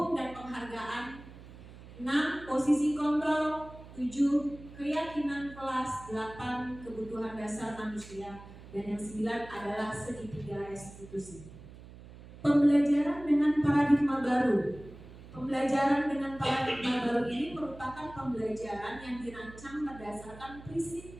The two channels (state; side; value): noise; right; hum, 17 dB below the sound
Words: penghargaan, 6 posisi kontrol, 7 keyakinan kelas, 8 kebutuhan dasar manusia, dan yang 9 adalah segitiga restitusi. Pembelajaran dengan paradigma baru. Pembelajaran dengan paradigma baru ini merupakan pembelajaran yang dirancang berdasarkan prinsip